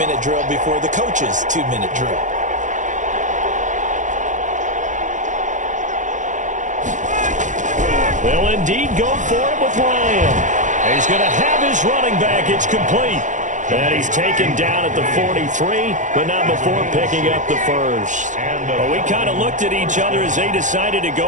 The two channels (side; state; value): left; late; 0.36 ms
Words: drill before the coach's 2-minute drill. They'll indeed go for it with Ryan. He's going to have his running back. It's complete. And he's taken down at the 43, but not before picking up the first. Well, we kind of looked at each other as they decided to